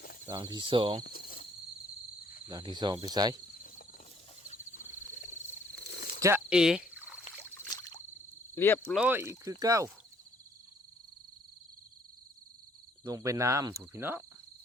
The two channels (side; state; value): both; normal; correlation 0.63